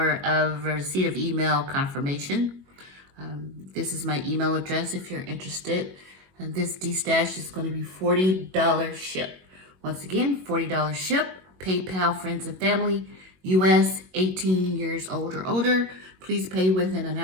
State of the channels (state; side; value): late; left; 21 ms